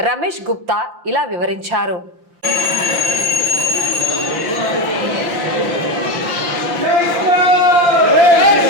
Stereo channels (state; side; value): late; left; 5.8 ms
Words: రమేష్ గుప్తా ఇలా వివరించారు.